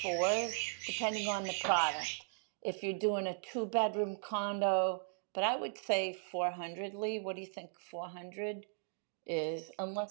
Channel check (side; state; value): left; silent; digital silence